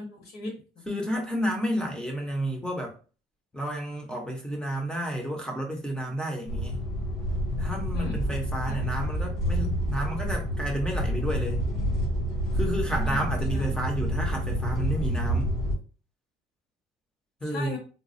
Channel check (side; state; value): both; normal; correlation 0.65